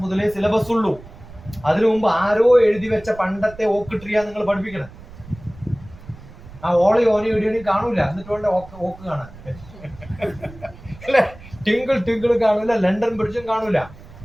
മുതലേ സിലബസ് ഉള്ളൂ. അതിനു മുമ്പ് ആരോ എഴുതി വെച്ച പണ്ടത്തെ ഓക്ക് ട്രീയാ നിങ്ങൾ പഠിപ്പിക്കണം. ആ ഓളി ഓനി ഇടിയണി കാണൂല. എന്നിട്ട് വേണ്ട ഓക്ക് കാണാൻ അല്ലെ? ടിങ്കിൾ കാണൂല, ലണ്ടൻ ബ്രിഡ്ജും കാണൂല.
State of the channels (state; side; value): noise; right; rumble, 19 dB below the sound